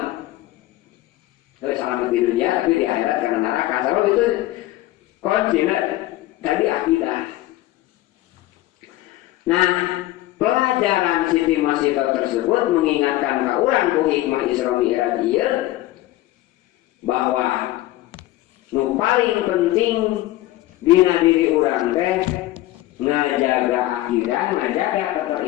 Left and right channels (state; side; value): quieter; right; 16.4 dB